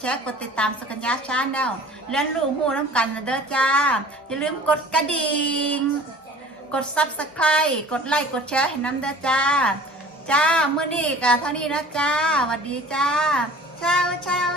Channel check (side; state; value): both; normal; correlation 0.45